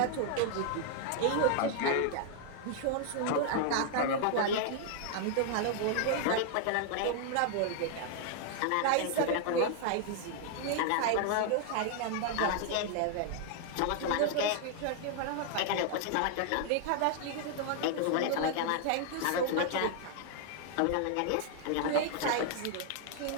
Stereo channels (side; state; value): both; different; correlation 0.00